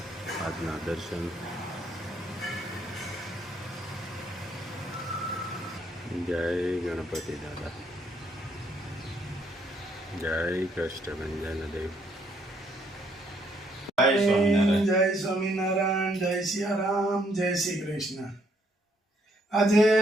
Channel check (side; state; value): both; normal; correlation 0.70